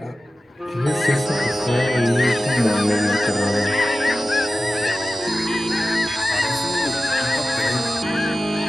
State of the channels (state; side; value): normal; both; correlation 0.94